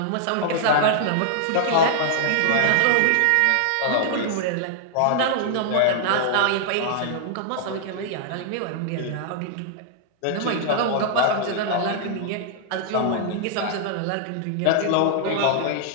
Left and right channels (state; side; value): different; both; correlation -0.01